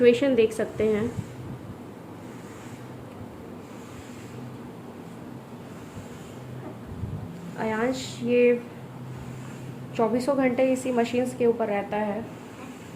देख सकते हैं। आयांश ये चौबीसों घंटे इसी मशीन्स के ऊपर रहता है।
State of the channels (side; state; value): both; identical; correlation 1.00